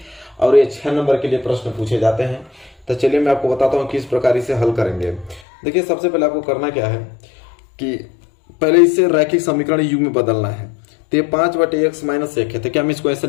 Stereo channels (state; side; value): drops out; right; at 5.4 s